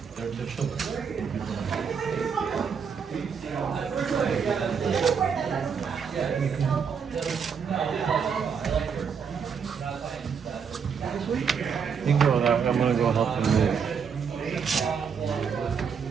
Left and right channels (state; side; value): quieter; left; 6.5 dB